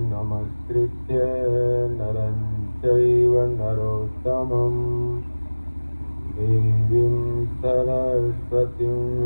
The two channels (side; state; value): both; inverted; correlation -1.00